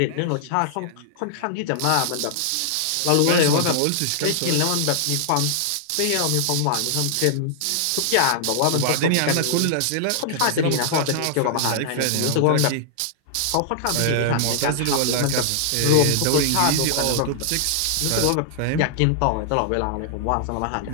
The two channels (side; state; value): both; different; correlation -0.01